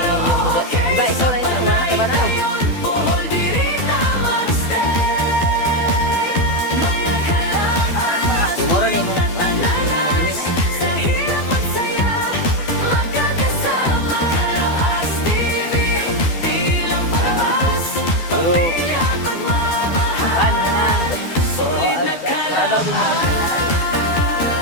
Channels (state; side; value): late; right; 12 ms